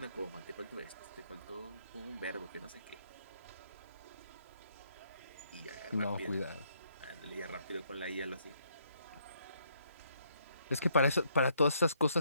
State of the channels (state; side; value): inverted; both; correlation -0.71